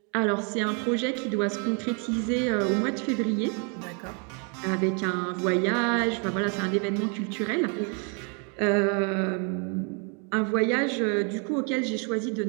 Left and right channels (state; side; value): quieter; left; 37.6 dB